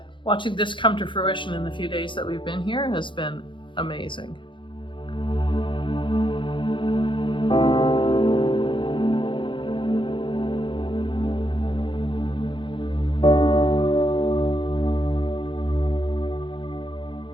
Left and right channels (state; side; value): late; right; 0.24 ms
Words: watching this come to fruition in the few days that we've been here has been amazing.